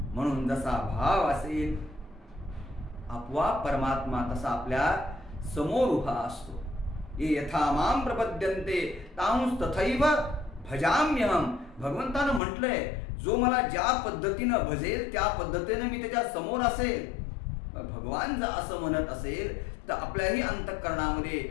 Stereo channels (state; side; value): drops out; right; at 12.4 s